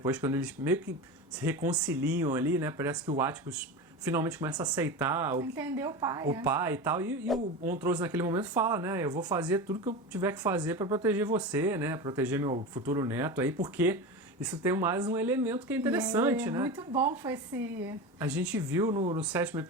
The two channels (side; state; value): both; normal; correlation 0.25